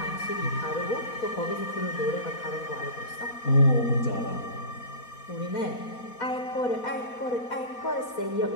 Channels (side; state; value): right; late; 4.2 ms